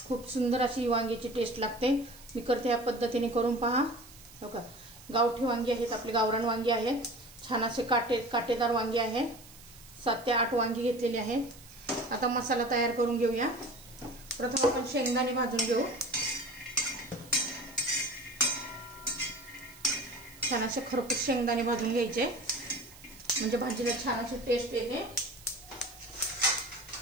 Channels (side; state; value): right; noise; hiss, 20 dB below the sound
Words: खूप सुंदर अशी वांगीची टेस्ट लागते। मी करते या पद्धतीने करून पहा। हो का, गावठी वांगी आहेत, आपली गावरान वांगी आहेत, छान असे काटेदार वांगी आहेत। 7 ते 8 वांगी घेतलेली आहेत। आता मसाला तयार करून घेऊया। प्रथम आपण शेंगदाणे भाजून घेऊ। छान असे खरपूस शेंगदाणे भाजून घ्यायचे, म्हणजे भाजीला छान अशी टेस्ट येते।